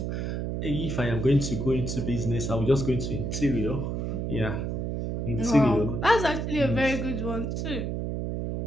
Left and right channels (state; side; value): noise; right; hum, 2 dB below the sound